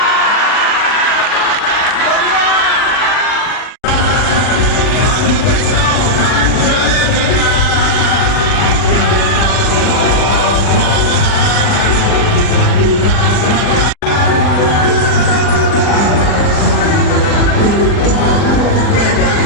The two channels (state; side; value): late; right; 40 ms